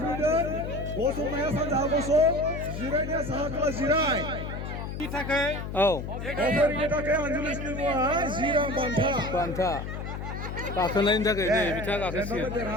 गसंनाया सानजाहा गसं जिरायनाया साहा खोला जिराय अफारिनि थाखाय आनजुलिसनि मुङा 10 रां बान्था गाखोनायनि थाखाय नै बिथाङा गाखोसिगोन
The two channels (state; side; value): noise; left; hum, 6 dB below the sound